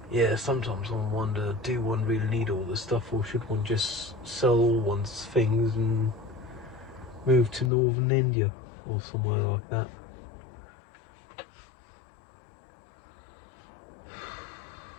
Yeah, sometimes I wonder, do one really need all this stuff, or should one just sell all one's things and move to northern India or somewhere like that?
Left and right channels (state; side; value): drops out; right; at 7.7 s